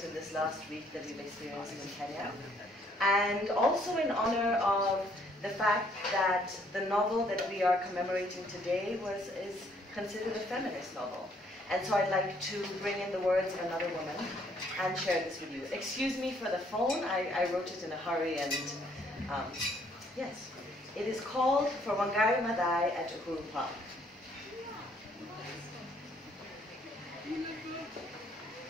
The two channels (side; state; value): both; normal; correlation 0.65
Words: in this last week that we've experienced in Kenya. And also in honor of the fact that the novel that we are commemorating today is considered a feminist novel. And so I'd like to bring in the words of another woman and share this with you. Excuse me for the phone, I wrote it in a hurry and yes. It is called For Wangari Maathai at Uhuru Park.